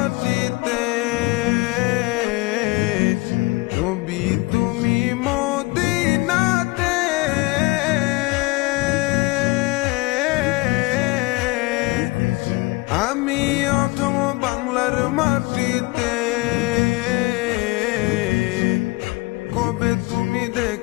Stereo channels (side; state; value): right; quieter; 23.6 dB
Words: নবী তুমি মদিনাতে, আমি অধম বাংলার মাটিতে। কবে তুমি